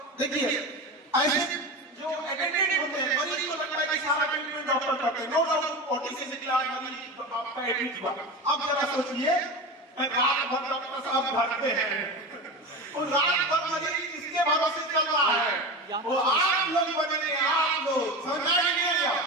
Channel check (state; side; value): normal; both; correlation 0.25